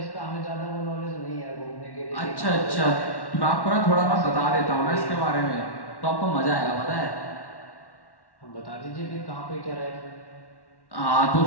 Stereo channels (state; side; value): late; right; 1.1 ms